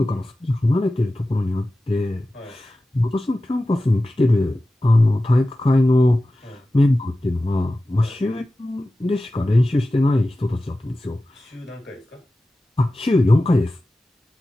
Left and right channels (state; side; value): normal; both; correlation 0.95